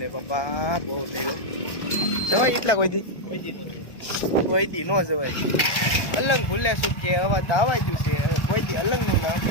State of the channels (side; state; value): right; late; 1.3 ms